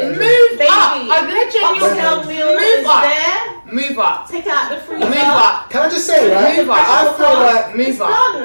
baby. up. I'm letting you Oxtail meal move is up. there. Move up. Take it out the freezer. Move up. Can I just say, right? Move up. I feel like Move up.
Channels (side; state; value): both; inverted; correlation -1.00